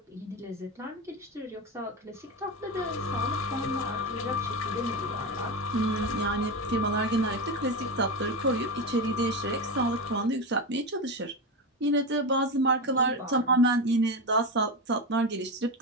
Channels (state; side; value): normal; both; correlation 0.17